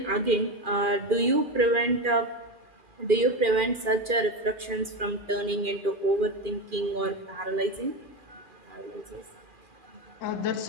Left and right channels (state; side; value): late; left; 2.4 ms